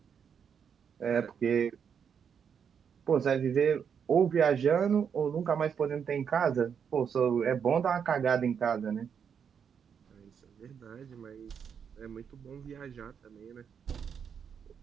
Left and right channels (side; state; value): left; quieter; 7.3 dB